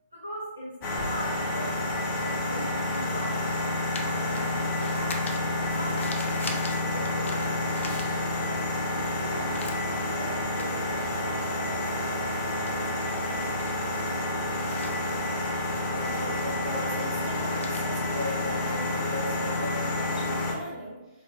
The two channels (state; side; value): inverted; both; correlation -0.49